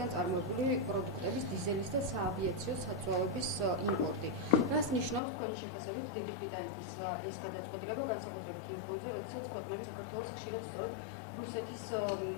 წარმოებული პროდუქტების, დიზელის და საავიაციო საწვავების იმპორტი. რას ნიშნავს თქვენი შეფასებით დიდი ბრიტანეთის ეს გადაწყვეტილება, განსაკუთრებით იმ ფონზე, როდესაც ქვეყნები საქართველოს ხშირად სწორედ რუსეთის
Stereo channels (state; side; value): drops out; right; at 5.2 s